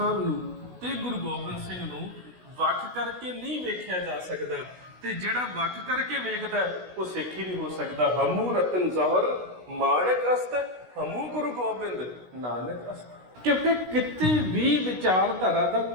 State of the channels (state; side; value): late; left; 16 ms